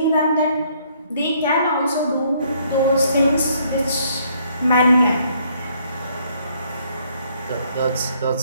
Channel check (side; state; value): both; inverted; correlation -0.66